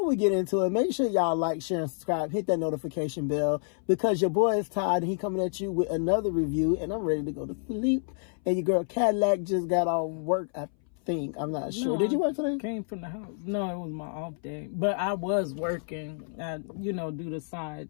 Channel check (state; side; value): silent; right; 59 dB below the other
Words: we get into it, make sure y'all like, share, and subscribe. Hit that notification bell because your boy is tired and he coming at you with another review. And I'm ready to go to sleep. And your girl, Cadillac, just got off work, I think. I'm not sure. Did you work today? Came from the house. No, it was my off day. But I was working. I, do the